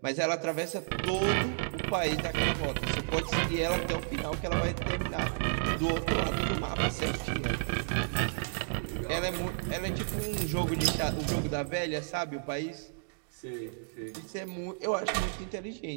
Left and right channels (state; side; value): silent; left; digital silence